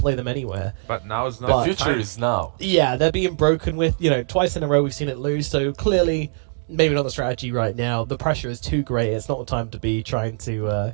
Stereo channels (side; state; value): left; silent; digital silence